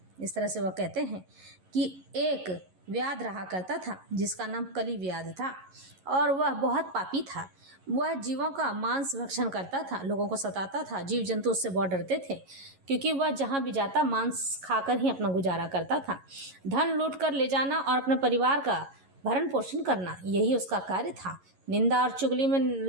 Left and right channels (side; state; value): left; late; 11 ms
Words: इस तरह से वह कहते हैं कि एक व्याध रहा करता था जिसका नाम कली व्याध था और वह बहुत पापी था। वह जीवों का मांस भक्षण करता था, लोगों को सताता था। जीव जंतु उससे बहुत डरते थे क्योंकि वह जहाँ भी जाता मांस खाकर ही अपना गुजारा करता था। धन लूट कर ले जाना और अपने परिवार का भरण पोषण करना, यही उसका कार्य था। निंदा और चुगली में